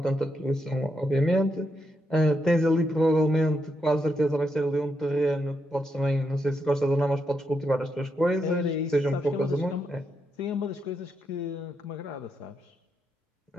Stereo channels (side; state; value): both; normal; correlation 0.82